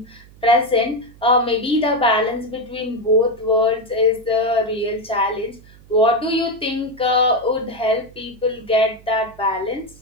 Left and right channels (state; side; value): noise; right; hum, 24 dB below the sound